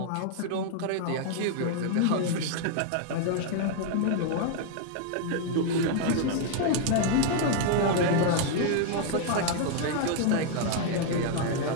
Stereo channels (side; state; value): both; different; correlation 0.00